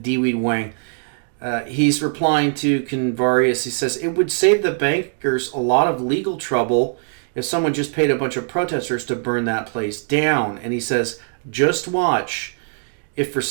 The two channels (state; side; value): silent; left; digital silence